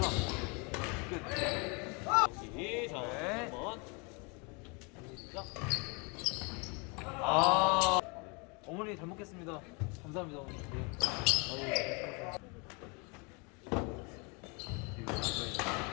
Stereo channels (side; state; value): right; quieter; 31.7 dB